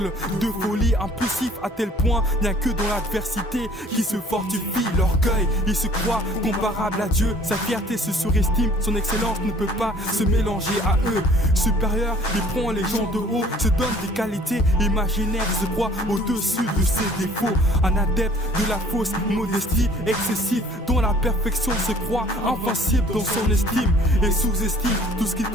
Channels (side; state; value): both; normal; correlation 0.53